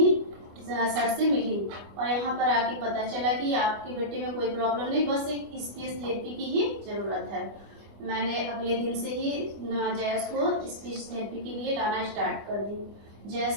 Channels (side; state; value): left; late; 25 ms